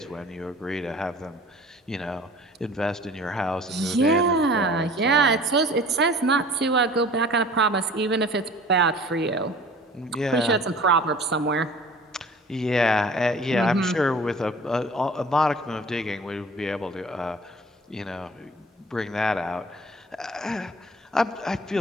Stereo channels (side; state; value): both; normal; correlation 0.46